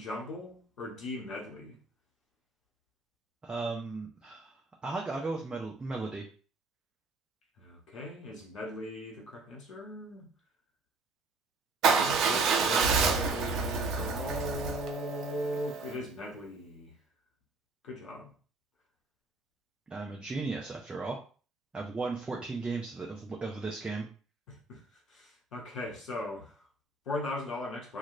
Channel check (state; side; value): quieter; left; 3.3 dB